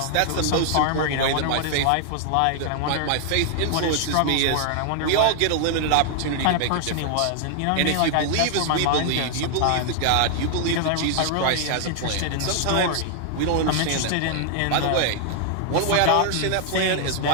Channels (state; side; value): different; both; correlation 0.00